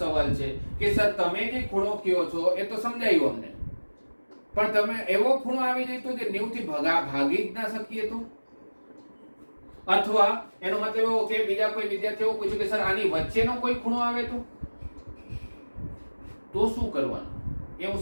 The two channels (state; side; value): inverted; both; correlation -1.00